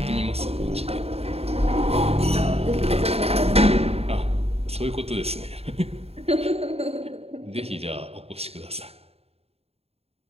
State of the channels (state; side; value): late; left; 0.29 ms